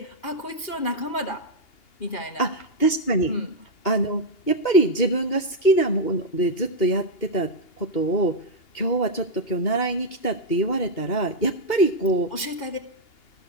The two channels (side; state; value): right; late; 2.8 ms